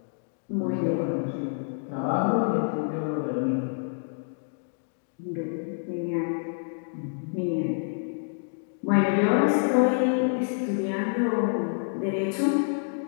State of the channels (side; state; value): right; silent; digital silence